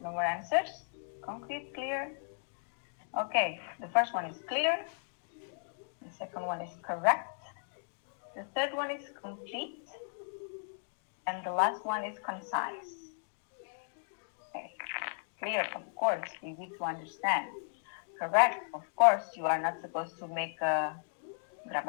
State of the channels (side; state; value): right; silent; digital silence